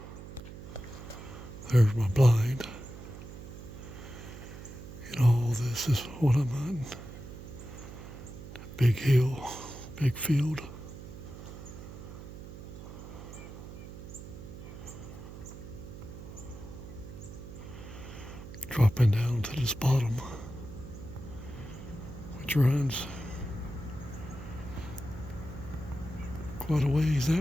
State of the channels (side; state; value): right; noise; hum, 12 dB below the sound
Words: there's my blind. And all this is what I'm hunting. Big hill, big field. Dropping down to this bottom, which runs quite a ways